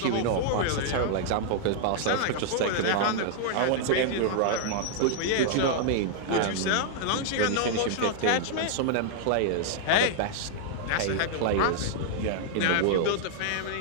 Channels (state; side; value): different; both; correlation -0.01